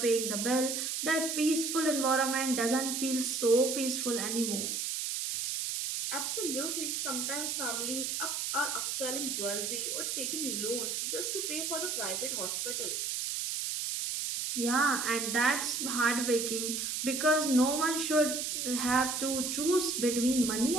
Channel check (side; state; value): right; noise; hiss, 1 dB below the sound